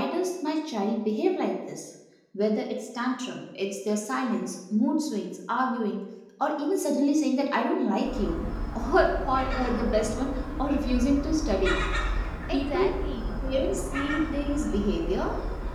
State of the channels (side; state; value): both; identical; correlation 1.00